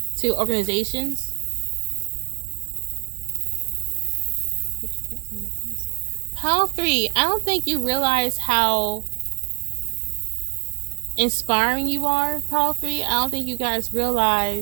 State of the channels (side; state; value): left; quieter; 35.6 dB